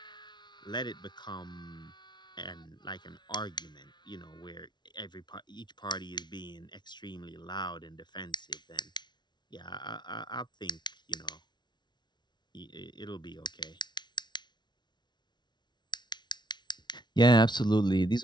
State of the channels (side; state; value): right; late; 0.21 ms